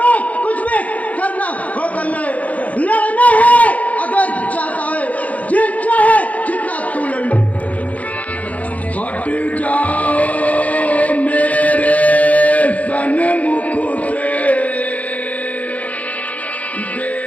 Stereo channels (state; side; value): late; right; 0.070 ms